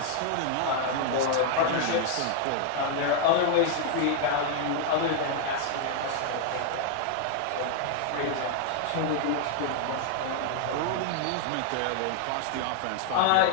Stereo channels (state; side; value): different; both; correlation 0.00